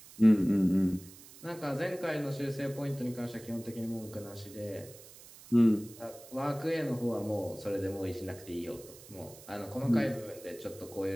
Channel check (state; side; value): noise; right; hiss, 19 dB below the sound